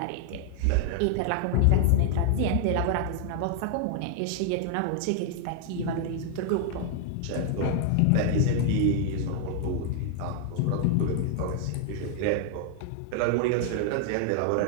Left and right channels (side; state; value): both; different; correlation 0.00